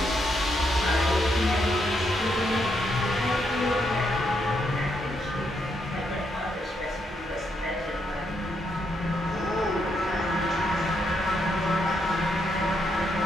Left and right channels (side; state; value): both; normal; correlation 0.78